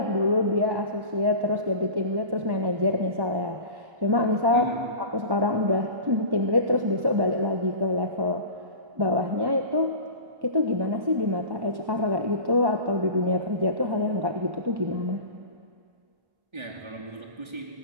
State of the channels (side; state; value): left; late; 1.1 ms